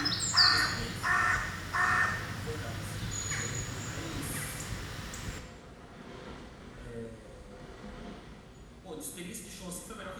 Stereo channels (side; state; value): both; identical; correlation 1.00